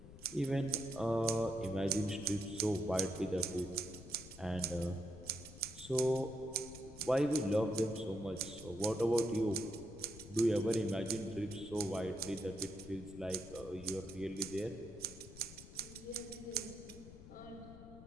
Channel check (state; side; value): noise; left; rumble, 16 dB below the sound